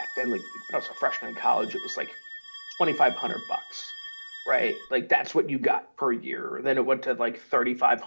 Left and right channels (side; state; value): both; inverted; correlation -1.00